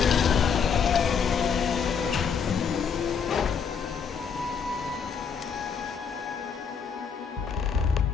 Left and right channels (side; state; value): right; quieter; 6.4 dB